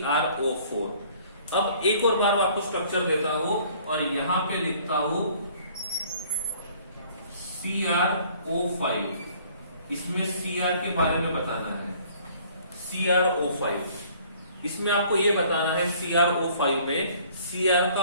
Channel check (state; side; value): inverted; both; correlation -0.56